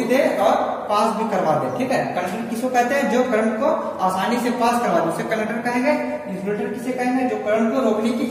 दे और पास भी करवा दे। ठीक है, कंडक्टर किसको कहते हैं, जो करंट को आसानी से पास करवा दे, उसे कंडक्टर कहेंगे। इंसुलेटर किसे कहेंगे, जो करंट को रोकने की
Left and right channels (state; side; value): identical; both; correlation 1.00